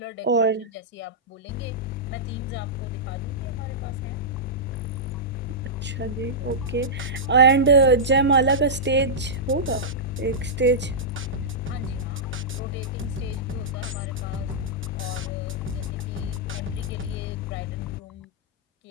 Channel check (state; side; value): normal; both; correlation -0.13